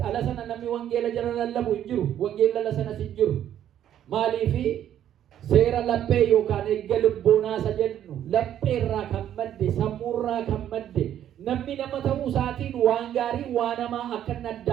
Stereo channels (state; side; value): quieter; left; 10.8 dB